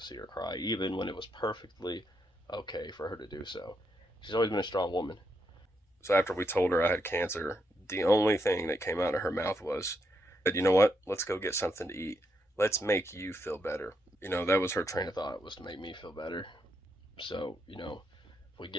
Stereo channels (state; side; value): normal; both; correlation 0.80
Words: see her cry, even when it was perfectly okay for her to do so. She's always been a strong woman. So after we told her I had cancer, the only thing that came out of her mouth was, you know what, let's go get something to eat. Let's make you feel better. That was her train of thought, was to make me feel better. So, if we